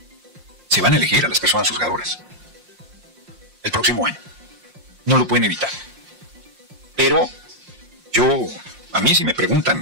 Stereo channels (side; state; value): left; late; 5.6 ms